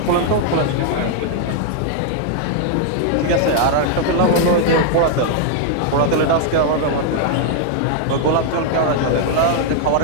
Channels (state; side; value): different; both; correlation -0.01